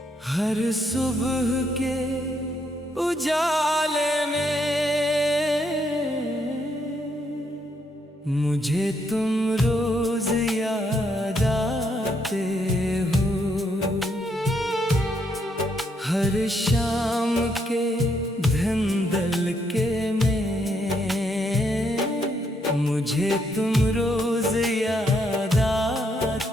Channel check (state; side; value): normal; both; correlation 0.75